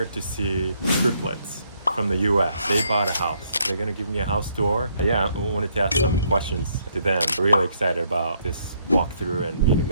to see Triplets from the US. They bought a house. They're gonna give me a house tour. Yeah, I wanted to ask some questions to them. Really excited about this walkthrough and meeting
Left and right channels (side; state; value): both; inverted; correlation -0.71